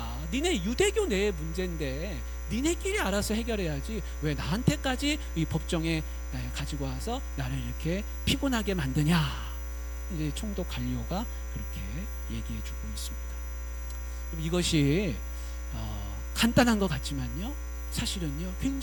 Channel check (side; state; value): both; identical; correlation 1.00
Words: 니네 유대교 내의 문제인데 니네끼리 알아서 해결해야지 왜 나한테까지 이 법정에 가지고 와서 나를 이렇게 피곤하게 만드냐. 이제 총독 갈리오가 그렇게 얘기해주고 있습니다. 이것이 간단한 것 같지만요, 사실은요